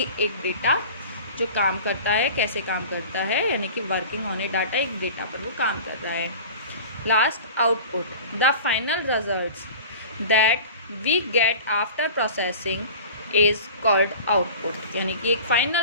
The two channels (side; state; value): both; inverted; correlation -0.39